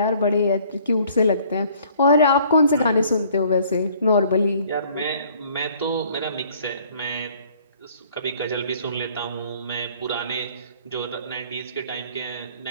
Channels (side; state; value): both; inverted; correlation -0.57